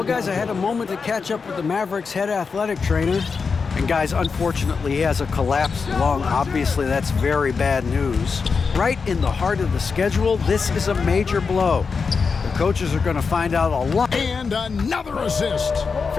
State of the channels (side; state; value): right; quieter; 5.2 dB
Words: guys, I had a moment to catch up with the Mavericks head athletic trainer. And, guys, unfortunately, he has a collapsed lung. Obviously, that's very bad news. Right in the heart of the schedule, this is a major blow. The coaches are going to find out a lot. And another assist.